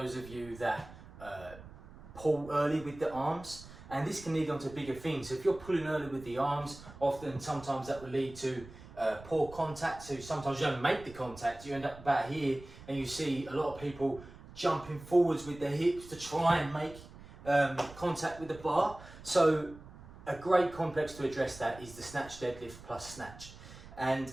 of you that pull early with the arms, and this can lead on to bigger things. So if you're pulling early with the arms, sometimes that will lead to poor contact, so sometimes you don't make the contact, you end up about here and you see a lot of people jumping forwards with their hips to try and make contact with the bar. So a great complex to address that is the snatch deadlift plus snatch, and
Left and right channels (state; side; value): noise; right; rumble, 18 dB below the sound